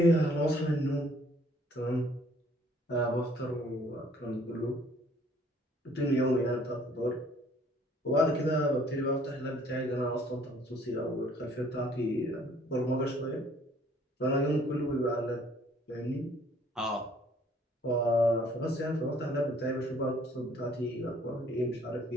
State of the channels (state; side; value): normal; both; correlation 0.59